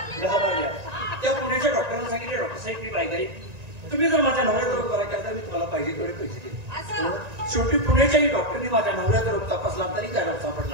त्या पुण्याच्या डॉक्टरांना सांगितले डॉक्टर साहेब मी बायगाई तुम्ही जर माझ्या नवऱ्याचा रोग करायचा तर मी तुम्हाला पाहिजे तेवढे पैसे देईन. शेवटी पुण्याच्याही डॉक्टरनी माझ्या नवऱ्याचा रोग तपासला तरी त्या रोग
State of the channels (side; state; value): left; late; 1.9 ms